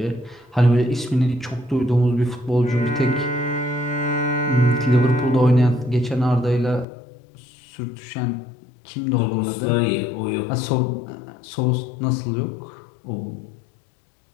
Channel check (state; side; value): drops out; right; at 6.9 s